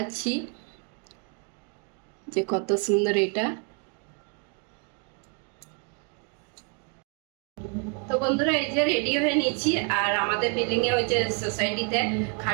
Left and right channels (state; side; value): quieter; left; 38.0 dB